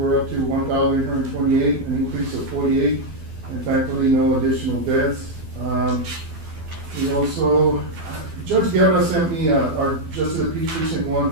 up to 1,828, an increase of 48, and thankfully no additional deaths. We also, Judge Guerra sent me, our Justice of the Peace Recent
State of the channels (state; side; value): late; left; 12 ms